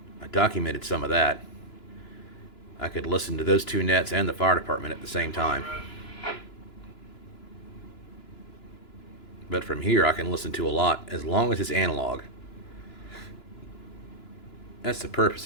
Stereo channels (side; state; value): right; late; 2.9 ms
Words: I documented some of that. I could listen to those 2 nets and the fire department at the same time. But from here I can listen to a lot as long as it's analog. That's the